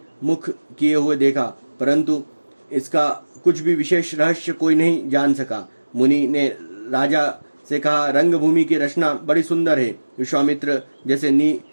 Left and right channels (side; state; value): both; inverted; correlation -1.00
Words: मुख किए हुए देखा, परंतु इसका कुछ भी विशेष रहस्य कोई नहीं जान सका। मुनि ने राजा से कहा, रंगभूमि की रचना बड़ी सुंदर है। विश्वामित्र जैसे